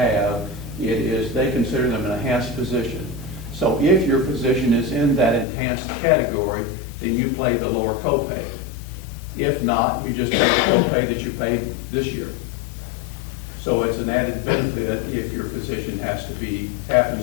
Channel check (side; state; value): right; drops out; at 5.5 s